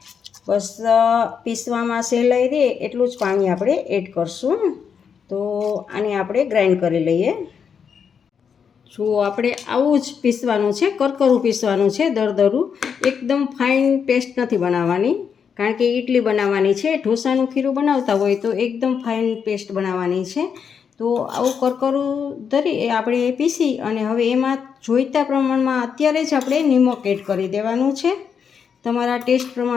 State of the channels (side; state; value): right; quieter; 6.9 dB